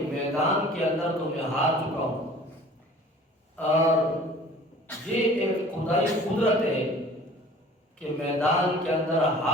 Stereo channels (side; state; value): both; normal; correlation 0.47